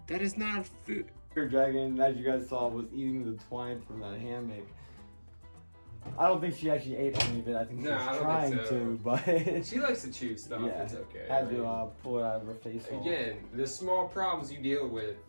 That is not food. Her dragon, as you guys saw, was eating the twine from that hammock. I don't think she actually ate any of it. I think she was trying to, but she likes to chew stuff. yeah, It's okay. had to pull it out of her face hole. Again, the small problems you deal with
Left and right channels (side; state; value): both; inverted; correlation -1.00